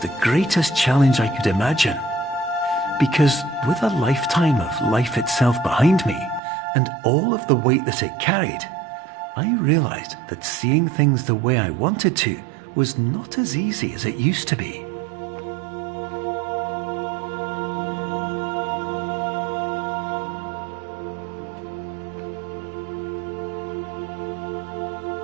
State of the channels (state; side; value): drops out; left; at 6.4 s